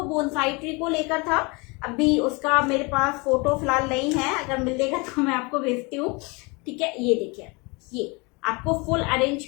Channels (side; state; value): right; quieter; 28.4 dB